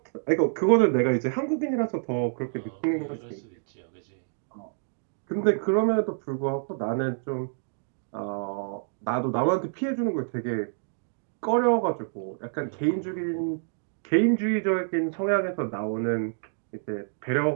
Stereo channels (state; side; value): silent; left; digital silence